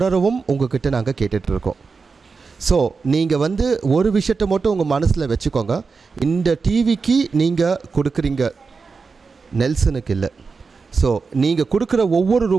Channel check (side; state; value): left; quieter; 4.8 dB